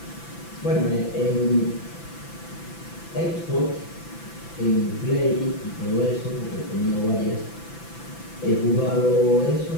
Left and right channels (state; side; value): late; right; 5.9 ms